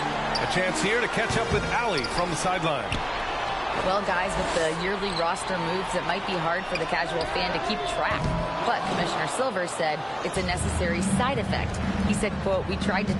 A chance here to catch up with Allie from the sideline. Well, guys, with the yearly roster moves, it might be hard for the casual fan to keep track. But Commissioner Silver said it's a necessary side effect. He said, quote, "We tried to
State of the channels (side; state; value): both; identical; correlation 1.00